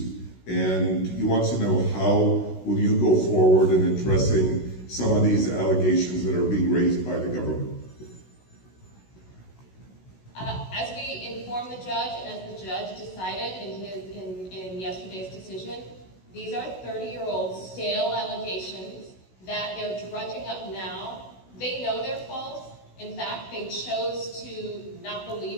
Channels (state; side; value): late; right; 16 ms